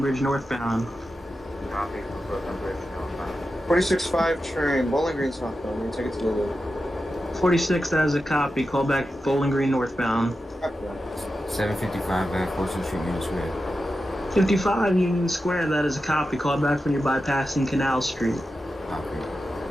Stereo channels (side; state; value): both; normal; correlation 0.91